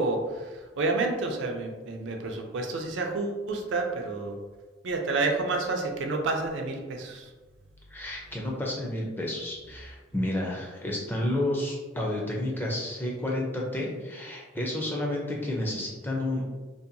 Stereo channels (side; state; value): both; normal; correlation 0.40